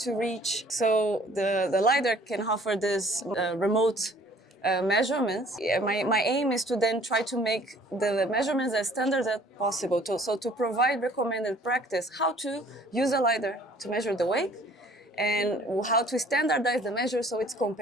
reach. So the Lidar can offer this remote measurements. My aim is to then try to make the measurements as standard as possible. So to provide recommended practice, how to use a Lidar to measure the wake, and how to standardize the measure so it's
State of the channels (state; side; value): normal; both; correlation 0.55